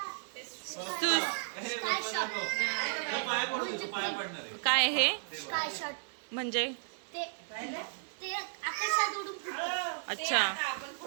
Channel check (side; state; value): left; silent; 55 dB below the other